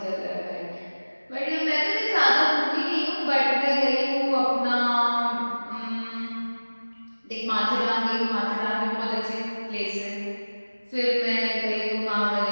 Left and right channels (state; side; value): inverted; both; correlation -1.00